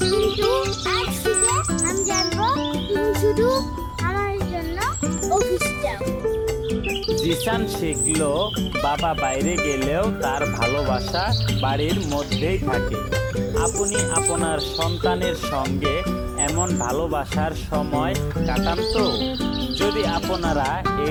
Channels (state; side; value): identical; both; correlation 1.00